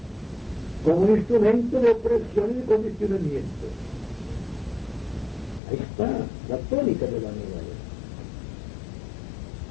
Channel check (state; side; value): drops out; right; at 5.6 s